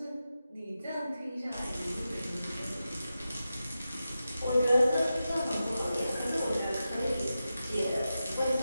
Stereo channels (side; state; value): both; inverted; correlation -0.91